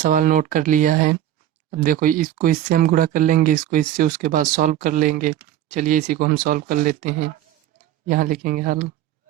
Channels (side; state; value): left; quieter; 12.0 dB